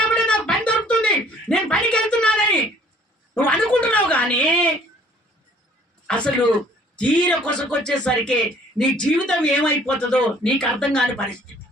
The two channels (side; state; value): both; normal; correlation 0.56